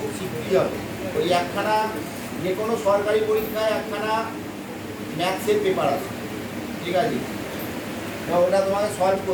শিখতেই হবে। ওই একখানা যে কোনো সরকারি পরীক্ষায় একখানা ম্যাথসের পেপার আছে, ঠিক আছে? তো ওটা তোমাকে সলভ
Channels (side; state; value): both; identical; correlation 1.00